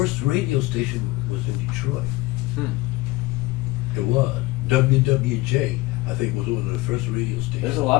radio station was in Detroit. It was. WWJ, I think, was one of the first radio stations. There's a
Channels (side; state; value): right; quieter; 20.2 dB